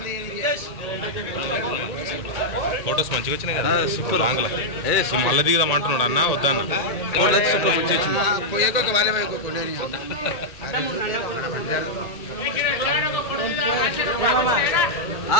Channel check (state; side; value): late; right; 1.8 ms